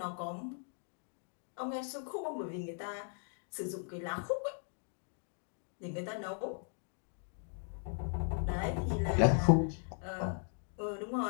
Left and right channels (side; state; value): right; silent; 52 dB below the other